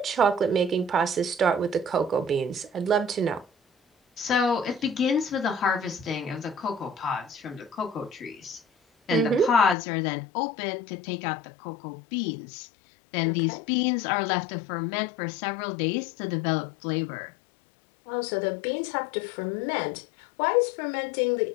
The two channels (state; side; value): drops out; right; at 9.8 s